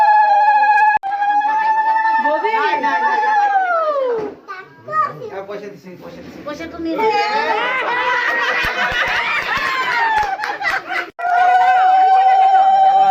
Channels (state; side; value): identical; both; correlation 1.00